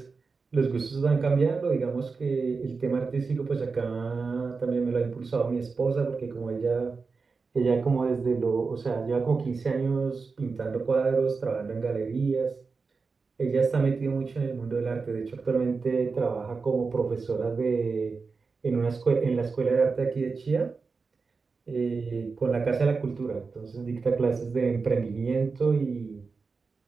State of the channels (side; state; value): left; quieter; 4.6 dB